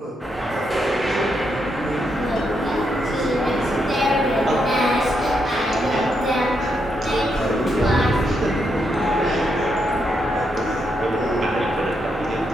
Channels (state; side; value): normal; both; correlation 0.80